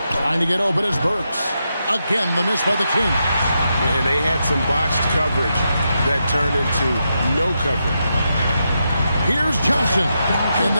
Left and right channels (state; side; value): inverted; both; correlation -0.85